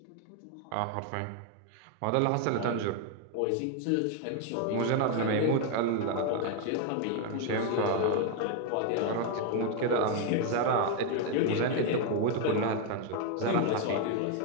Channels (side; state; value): both; different; correlation 0.01